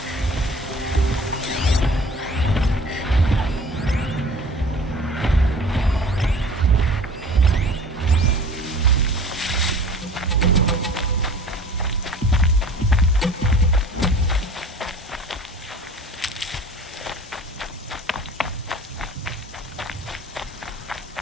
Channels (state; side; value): normal; both; correlation 0.44